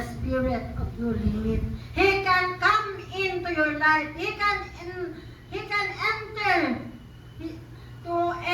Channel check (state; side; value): identical; both; correlation 1.00